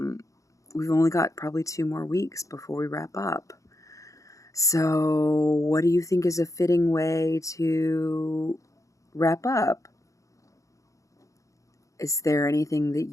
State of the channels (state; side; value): late; right; 0.16 ms